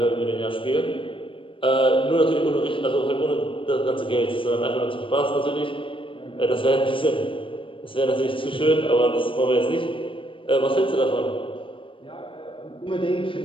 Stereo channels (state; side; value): late; right; 0.25 ms